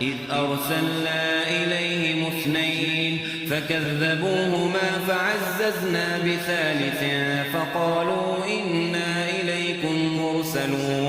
إذ أرسلنا إليهم اثنين فكذبوهما فعززنا بثالث فقالوا إنا إليكم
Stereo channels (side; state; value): both; identical; correlation 1.00